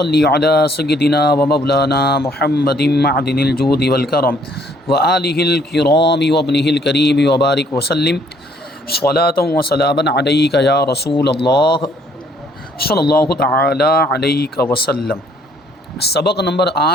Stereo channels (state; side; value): normal; both; correlation 0.63